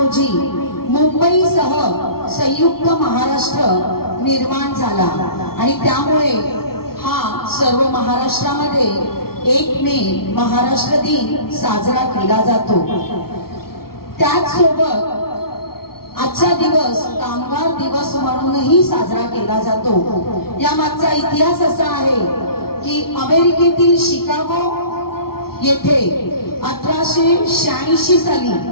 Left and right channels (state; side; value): late; right; 0.94 ms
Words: मुंबईसह संयुक्त महाराष्ट्र निर्माण झाला. आणि त्यामुळे हा सर्व महाराष्ट्रामध्ये 1 मे महाराष्ट्र दिन साजरा केला जातो. त्याचसोबत आजचा दिवस कामगार दिवस म्हणूनही साजरा केला जातो. या मागचा इतिहास असा आहे की अमेरिकेतील शिकागो येथे 1886 साली